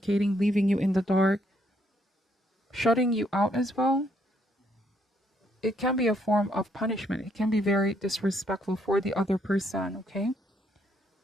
leaving you in the dark, shutting you out as well. It can be a form of punishment. It can be very disrespectful for the other person, okay?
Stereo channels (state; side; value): normal; both; correlation 0.71